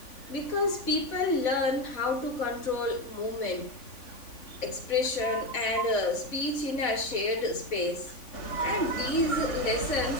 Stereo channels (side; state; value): right; late; 3.5 ms